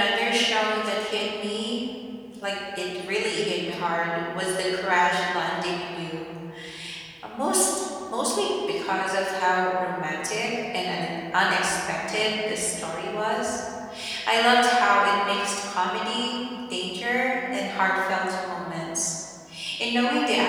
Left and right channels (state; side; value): identical; both; correlation 1.00